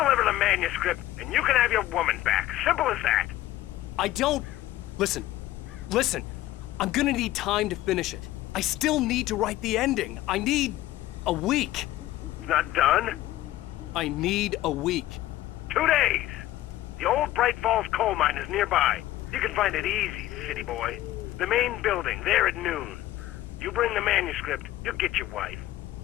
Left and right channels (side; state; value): right; quieter; 15.1 dB